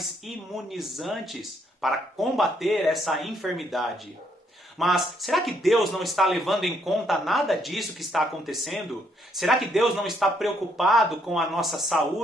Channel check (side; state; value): both; normal; correlation 0.71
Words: imunizantes para combater essa enfermidade. Mas será que Deus não está levando em conta nada disso que está acontecendo? Será que Deus não está preocupado com a nossa